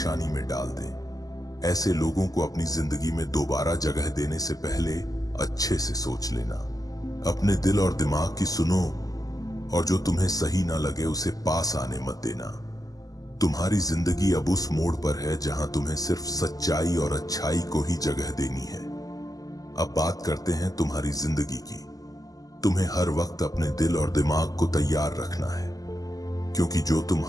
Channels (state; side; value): late; right; 0.17 ms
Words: में डाल दे। ऐसे लोगों को अपनी जिंदगी में दोबारा जगह देने से पहले अच्छे से सोच लेना। अपने दिल और दिमाग की सुनो और जो तुम्हें सही ना लगे उसे पास आने मत देना। तुम्हारी जिंदगी अब उस मोड़ पर है जहां तुम्हें सिर्फ सच्चाई और अच्छाई को ही जगह देनी है। अब बात करते हैं तुम्हारी जिंदगी की। तुम्हें हर वक्त अपने दिल और दिमाग को तैयार रखना है, क्योंकि जो तुम